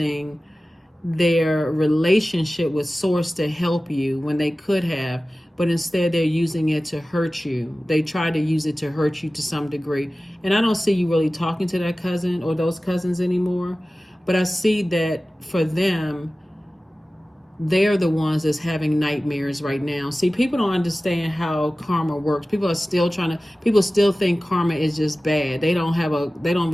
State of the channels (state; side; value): normal; both; correlation 0.96